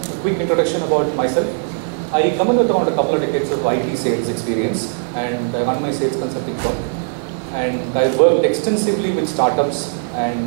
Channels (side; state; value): left; silent; digital silence